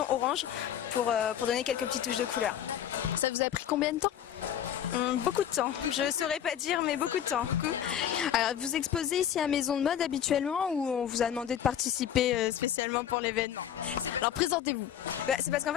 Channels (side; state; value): right; quieter; 9.9 dB